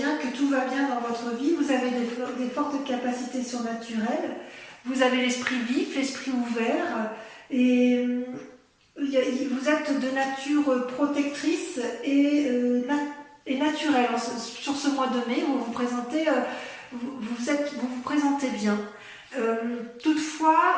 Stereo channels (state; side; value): identical; both; correlation 1.00